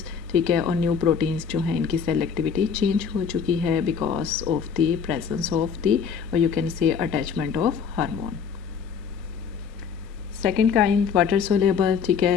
ठीक है। और न्यू प्रोटीन्स जो हैं इनकी सेल एक्टिविटी चेंज हो चुकी है because of the presence of the, और you can say attachment of hormone. Second kind water soluble, ठीक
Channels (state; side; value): quieter; right; 6.6 dB